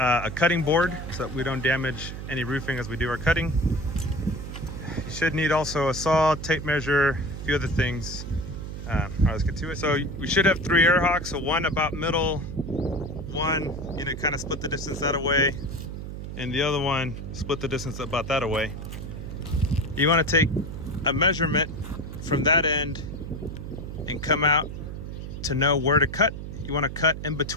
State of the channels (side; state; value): right; noise; hum, 8 dB below the sound